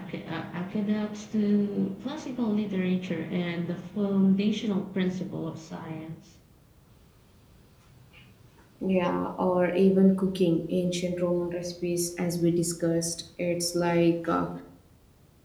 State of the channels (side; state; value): both; identical; correlation 1.00